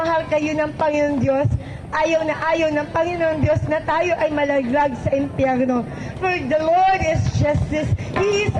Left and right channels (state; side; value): identical; both; correlation 1.00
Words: kayo ng Panginoon Diyos. Ayaw ng Panginoon Diyos na tayo ay malaglag sa impyerno. For the Lord is justice. He is